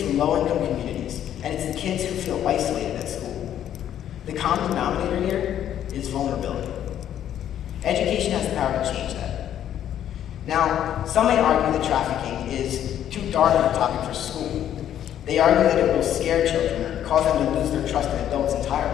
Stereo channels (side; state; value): right; quieter; 10.6 dB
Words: low-income communities, and it's the kids who feel isolated at school. The common denominator here is vulnerability. Education has the power to change that. Now, some may argue that trafficking is too dark of a topic for school. They argue that it will scare children or cause them to lose their trust in adults